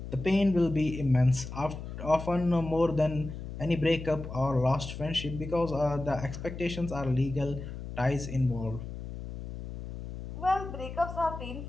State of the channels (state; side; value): noise; left; hum, 9 dB below the sound